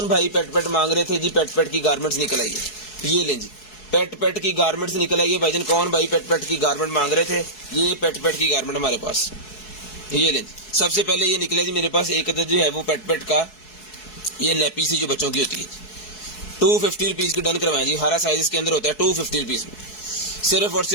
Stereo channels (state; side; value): late; right; 4.7 ms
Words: भाई पेट मांग रहे थे जी? पेट की गारमेंट्स निकल आई है। ये लें जी, पेट की गारमेंट्स निकल आई है भाईजान। कौन भाई पेट की गारमेंट मांग रहे थे? ये पेट की गारमेंट हमारे पास, ये लें जी। सबसे पहले ये निकला जी मेरे पास एक अदद जो है वो पेट का, ये नैपी सी जो बच्चों की होती है, 250 रुपीज़ की डन करवाएं जी। हरा साइज इसके अंदर होता है, 250 रुपीज़ में, सिर्फ और